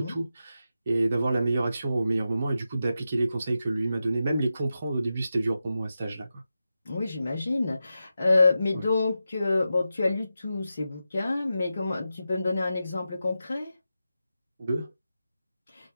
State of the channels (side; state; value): both; inverted; correlation -0.90